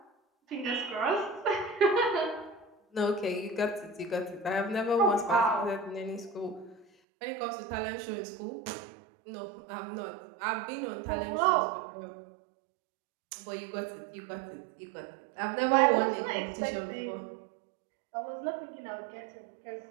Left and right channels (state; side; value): drops out; left; at 6.9 s